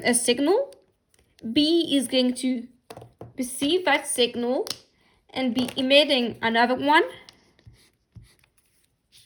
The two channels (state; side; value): identical; both; correlation 1.00